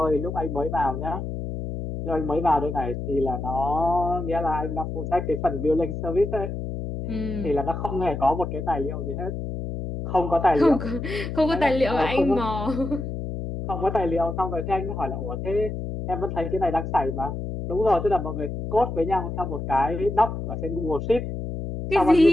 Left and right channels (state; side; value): noise; left; hum, 5 dB below the sound